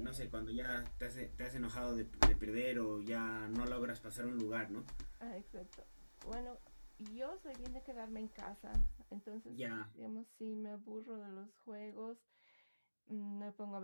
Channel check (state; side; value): inverted; both; correlation -1.00